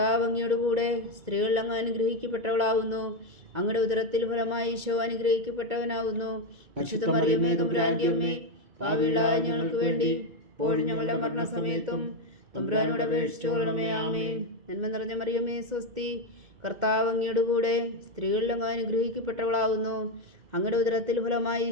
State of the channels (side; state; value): left; late; 2.0 ms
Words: അങ്ങയുടെ കൂടെ സ്ത്രീകളിൽ അങ്ങ് അനുഗ്രഹിക്കപ്പെട്ടവളാകുന്നു. അങ്ങയുടെ ഉദരത്തിൽ ഫലമായി ഈശോ അനുഗ്രഹിക്കപ്പെട്ടവനാകുന്നു. പരിശുദ്ധ മറിയമേ തമ്പുരാന്റെ അമ്മേ, പാപികളായ ഞങ്ങൾക്ക് വേണ്ടി ഇപ്പോഴും ഞങ്ങളുടെ മരണസമയത്തും തമ്പുരാനോട് അപേക്ഷിച്ചുകൊള്ളണമേ. ആമേൻ. നന്മ നിറഞ്ഞ മറിയമേ, സ്വസ്തി. കർത്താവ് അങ്ങയുടെ കൂടെ സ്ത്രീകളിൽ അങ്ങ് അനുഗ്രഹിക്കപ്പെട്ടവളാകുന്നു. അങ്ങയുടെ ഉദരത്തിൽ ഫലമായി